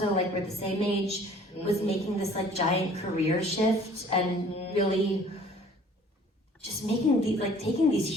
like we're the same age, was making this like giant career shift and really just making taking these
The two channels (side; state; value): both; normal; correlation 0.53